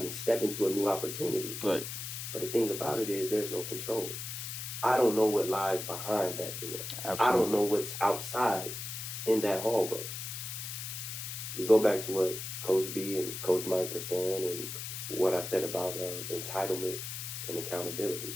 and step into a new opportunity. Right. But the thing about it is, there's no control. I don't know what lies behind that door. Absolutely. I don't know what's outside in that hallway. We go back to what Coach B and Coach Mike were saying, and what I said about entitlement and accountability.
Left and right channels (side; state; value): left; noise; hiss, 6 dB below the sound